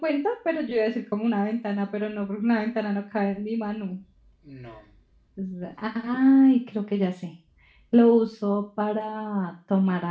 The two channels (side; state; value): both; identical; correlation 1.00